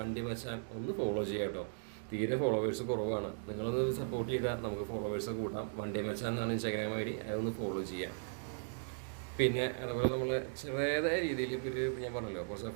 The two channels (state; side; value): silent; left; digital silence